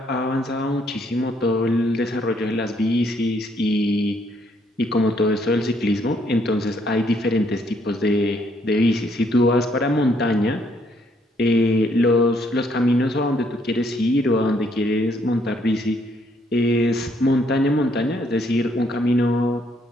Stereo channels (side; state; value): both; normal; correlation 0.69